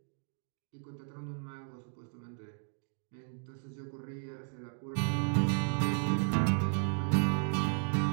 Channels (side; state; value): left; silent; 55 dB below the other